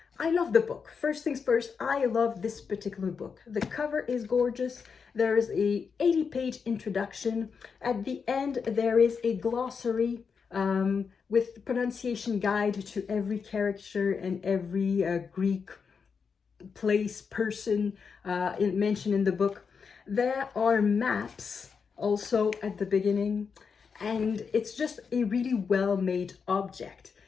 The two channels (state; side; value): quieter; right; 5.8 dB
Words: I love the book. First things first, I love this particular book. The cover is gorgeous. There is a 80-page introduction. At the end, there is a glossary with pronunciation guide to every character and every Greek place, person mentioned in the book. There are maps also at the beginning, and it's just a really well-made object.